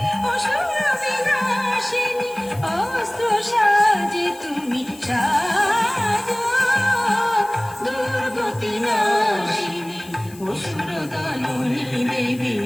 অসুর বিনাশিনী অস্ত্র সাজে তুমি সাজো দুর্গতি নাশিনী অসুর দলনী দেবী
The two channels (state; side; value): noise; left; hiss, 21 dB below the sound